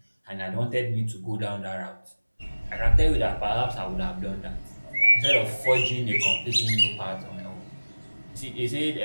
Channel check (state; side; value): inverted; both; correlation -1.00